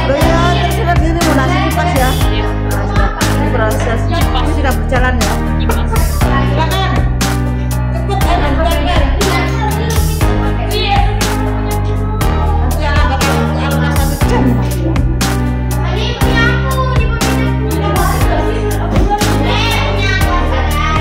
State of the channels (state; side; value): identical; both; correlation 1.00